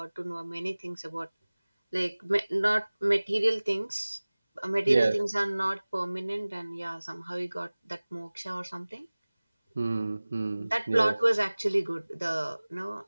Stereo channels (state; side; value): inverted; both; correlation -0.99